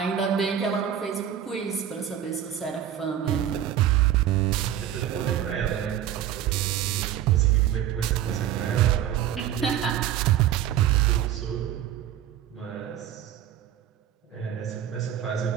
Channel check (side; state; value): left; quieter; 10.6 dB